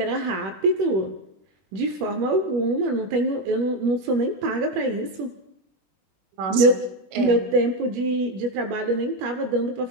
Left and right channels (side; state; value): left; late; 21 ms